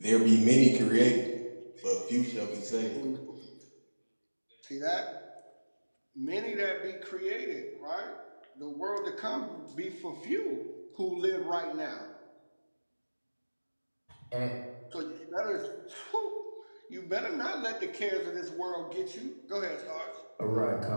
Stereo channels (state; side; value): inverted; both; correlation -1.00